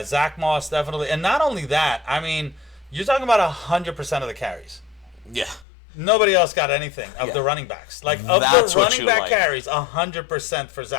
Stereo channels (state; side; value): drops out; right; at 5.7 s